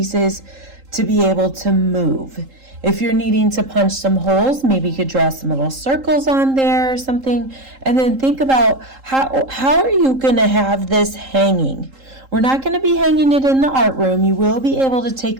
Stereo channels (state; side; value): late; left; 3.8 ms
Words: to be able to move. If you're needing to punch some holes, maybe you could draw some little circles on there or something, and then think about how are you going to have this hanging. We're not going to be hanging it in the art room. You will be able to take